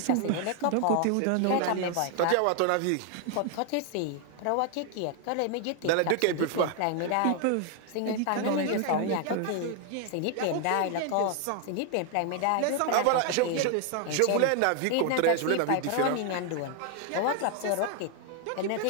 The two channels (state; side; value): different; both; correlation 0.00